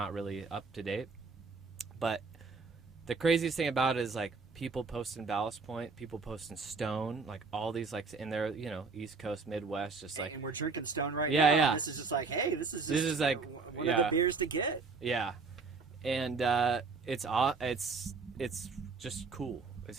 really up to date. But the craziest thing about it is like people posting Ballast Point, people posting Stone, like all these like in their, you know, East Coast, Midwest, just like. And we're drinking Stone right Yeah, now. yeah. This is just like, hey, this is like one of the beers to get. Yeah, and it's just cool.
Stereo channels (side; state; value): left; quieter; 4.4 dB